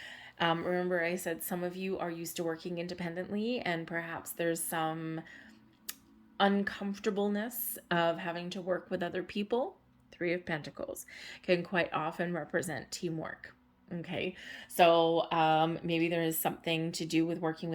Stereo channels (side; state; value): both; identical; correlation 1.00